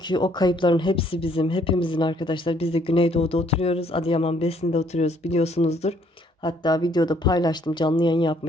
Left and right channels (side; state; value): both; normal; correlation 0.66